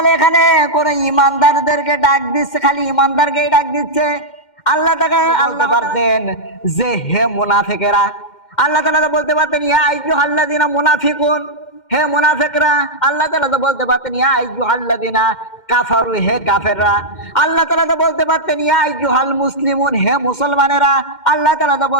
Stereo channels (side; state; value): right; late; 2.1 ms